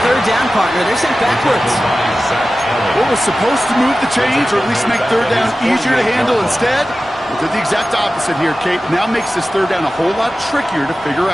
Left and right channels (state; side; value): normal; both; correlation 0.95